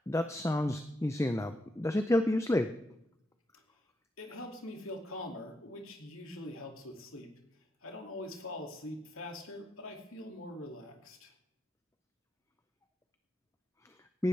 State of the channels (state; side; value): normal; both; correlation 0.82